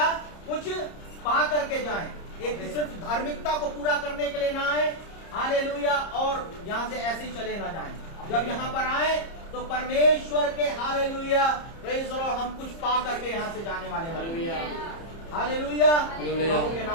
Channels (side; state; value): right; late; 30 ms